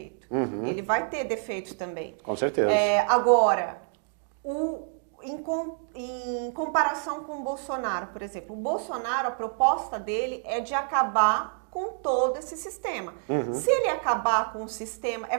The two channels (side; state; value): left; silent; 58 dB below the other